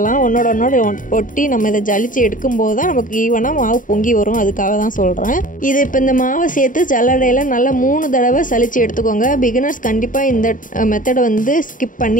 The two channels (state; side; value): late; right; 0.39 ms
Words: ஒன்னோட ஒட்டி நம்ம இதை ஜலிச்சு எடுக்கும்போது தான் நமக்கு ஈவனாக மாவு பொங்கி வரும். அதுக்காக தான் சொல்கிறேன். இது இப்போ இந்த மாவை சேர்த்து ஜல்லடையில் நல்லா 3 தடவை சலிச்சு எடுத்துக்கோங்க. பிகினர்ஸ் கண்டிப்பாக இந்த மெத்தடை வந்து ஸ்கிப்